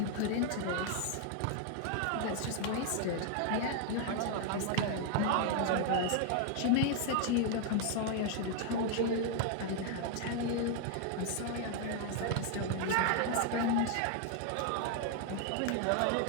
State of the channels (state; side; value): different; both; correlation 0.00